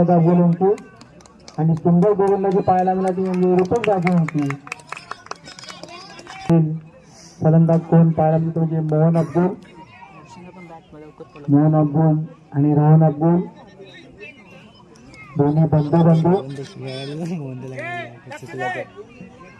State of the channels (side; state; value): both; identical; correlation 1.00